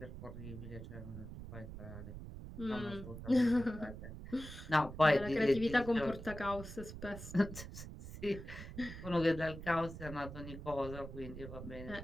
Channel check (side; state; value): right; noise; rumble, 11 dB below the sound